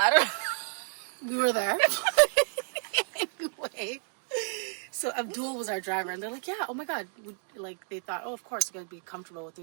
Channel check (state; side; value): silent; left; digital silence